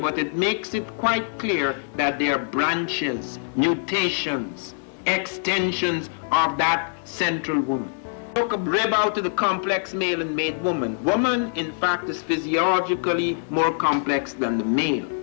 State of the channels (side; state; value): right; silent; digital silence